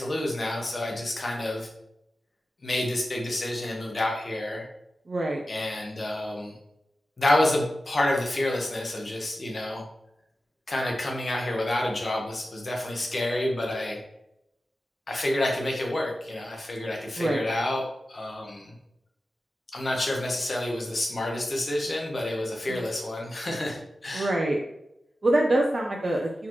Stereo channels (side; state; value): both; normal; correlation 0.93